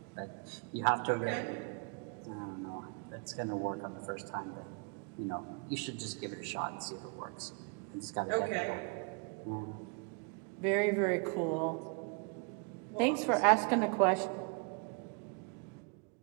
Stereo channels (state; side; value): quieter; left; 35.5 dB